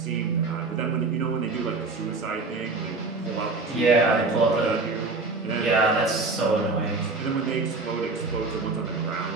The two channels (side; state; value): left; quieter; 3.7 dB